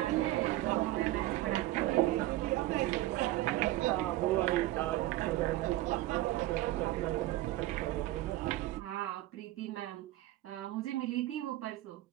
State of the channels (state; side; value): quieter; left; 16.5 dB